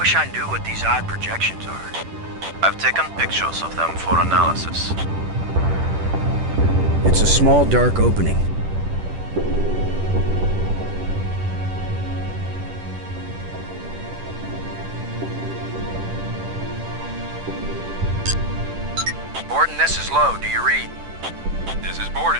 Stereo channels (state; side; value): late; left; 10 ms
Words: I knew what these odd projections are. I've taken pictures of them for analysis. It's a small dark opening. Borden, this is Low. Do you read? This is